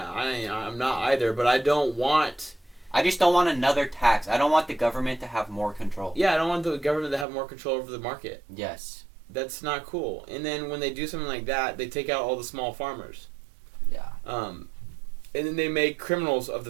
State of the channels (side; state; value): left; drops out; at 7.2 s